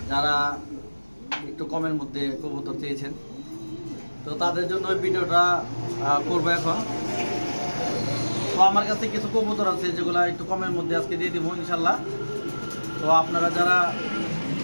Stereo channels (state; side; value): inverted; both; correlation -1.00